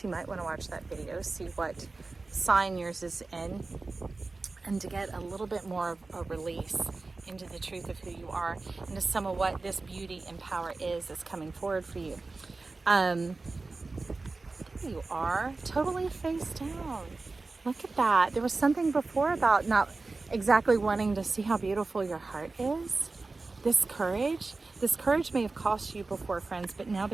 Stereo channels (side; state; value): left; quieter; 3.6 dB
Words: You might want to watch that video, see what sign yours is in, and to get a little bit more of a release into the truth of who you are, into some of what this beauty and power is that's coming forward for you. There you are, totally face down. Look at that. There was something before about not exactly wanting to see how beautiful your heart is. This courage may have cost you before, friends, but now